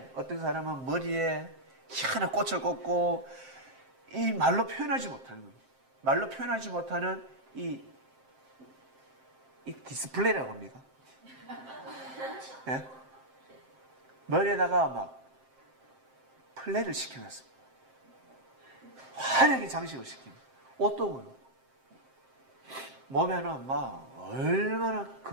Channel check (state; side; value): late; left; 7.6 ms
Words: 어떤 사람은 머리에 희한한 꽃을 꽂고 이 말로 표현하지 못하는 겁니다. 말로 표현하지 못하는 이 디스플레이라고 합니까? 예? 머리에다가 막 플레이를 시켜놨습니다. 화려하게 장식을 시킵니다. 옷도 그렇고 몸에는 막 얼마나